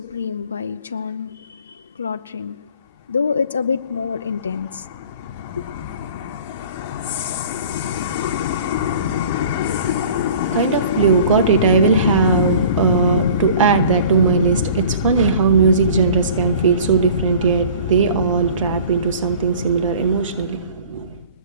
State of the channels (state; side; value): inverted; both; correlation -0.45